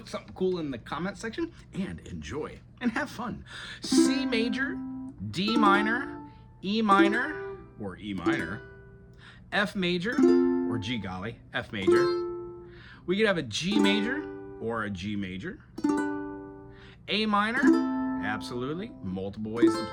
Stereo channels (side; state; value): both; identical; correlation 1.00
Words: something cool in the comment section, and enjoy and have fun. C major, D minor, E minor, or E minor, F major, or G golly, F major. We could have a G major or a G major. A minor, absolutely, multiple ways to